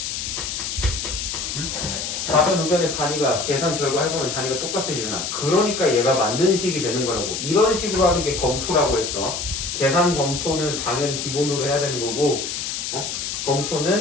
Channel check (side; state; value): left; noise; hiss, 4 dB below the sound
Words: 좌변 우변의 단위가 계산 결과 해보면 단위가 똑같아지잖아. 그러니까 얘가 만든 식이 되는 거라고. 이런 식으로 하는 게 검토라고 했어. 계산 검토는 당연히 기본으로 해야 되는 거고